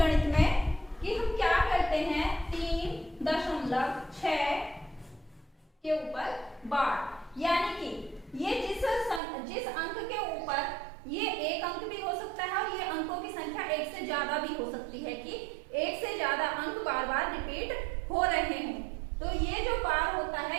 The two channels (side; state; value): left; drops out; at 9.2 s